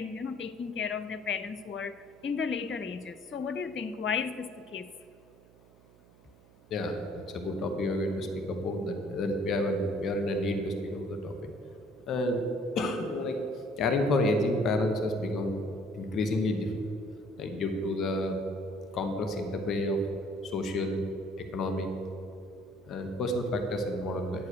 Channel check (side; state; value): right; noise; hum, 26 dB below the sound